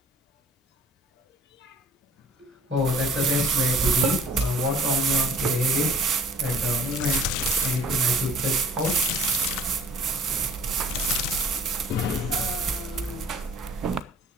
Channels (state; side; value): normal; both; correlation 0.51